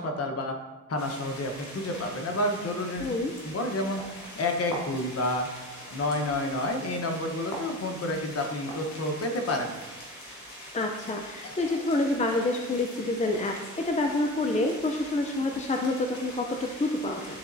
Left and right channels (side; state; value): both; normal; correlation 0.29